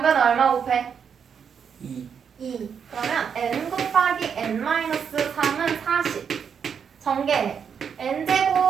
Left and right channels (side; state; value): left; quieter; 7.1 dB